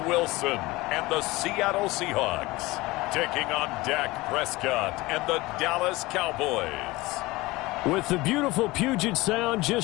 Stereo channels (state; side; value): quieter; right; 20.8 dB